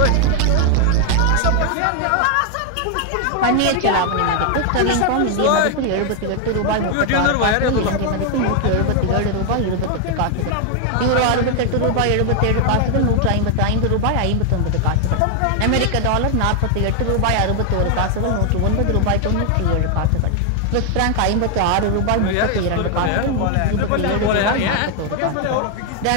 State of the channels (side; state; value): both; different; correlation 0.00